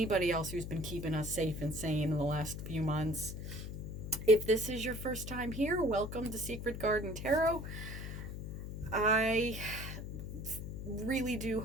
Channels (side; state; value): left; noise; hum, 7 dB below the sound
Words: else who's been keeping us safe and sane in the last few months. If this is your first time here, welcome to Secret Garden Tarot. I really do